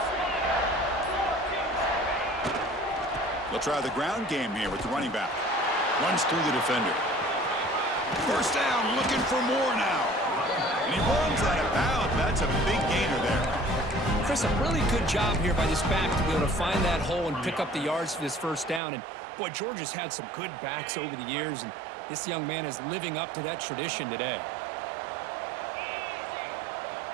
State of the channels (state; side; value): drops out; left; at 18.8 s